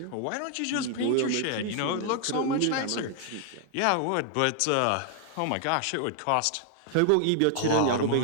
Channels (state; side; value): different; both; correlation 0.00